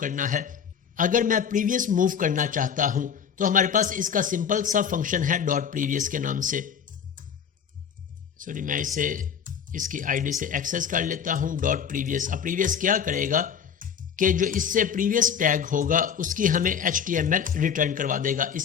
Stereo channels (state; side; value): quieter; right; 7.6 dB